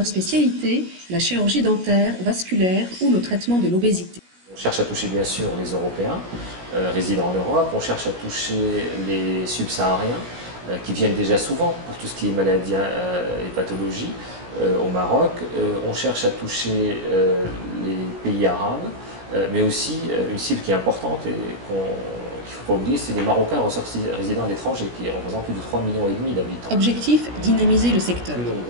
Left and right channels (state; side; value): late; left; 17 ms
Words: spécialités, la chirurgie dentaire, vasculaire ou le traitement de l'obésité. On cherche à toucher bien sûr les Européens résidant en Europe, on cherche à toucher les subsahariens qui viennent déjà souvent pour tout ce qui est maladies et pathologies au Maroc. On cherche à toucher les pays arabes, mais aussi une cible qui est importante et qu'il ne faut pas oublier, c'est les Marocains résidant à l'étranger qui représentent plus de 3,5 millions d'habitants. Objectif, dynamiser le secteur. Plus